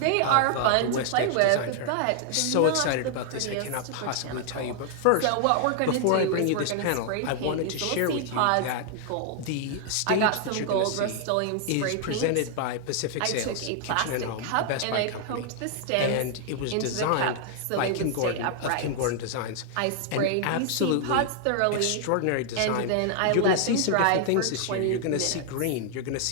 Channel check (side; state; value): both; different; correlation 0.00